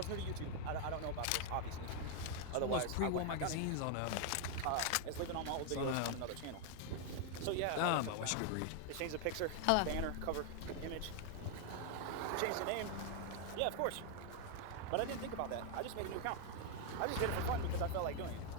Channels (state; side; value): different; both; correlation 0.00